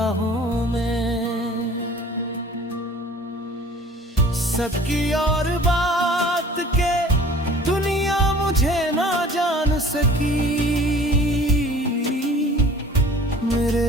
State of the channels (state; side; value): normal; both; correlation 0.48